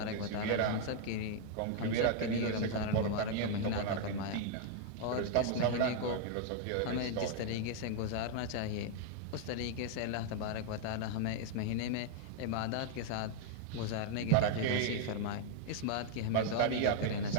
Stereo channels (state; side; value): different; both; correlation 0.00